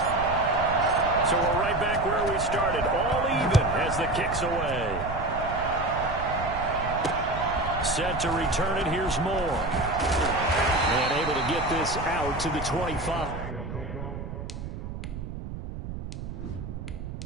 So we're right back where we started, all even as the kick's away. Set to return it, here's Moore. And able to get this out to the 25.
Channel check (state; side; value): noise; right; rumble, 8 dB below the sound